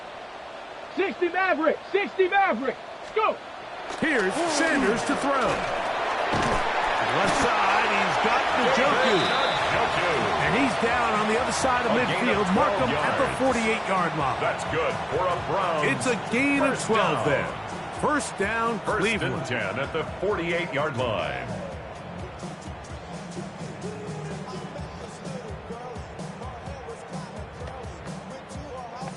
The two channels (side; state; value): both; identical; correlation 1.00